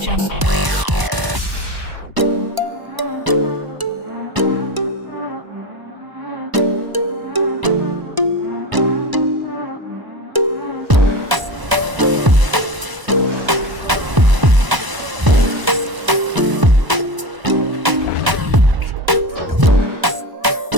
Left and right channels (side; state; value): left; late; 1.0 ms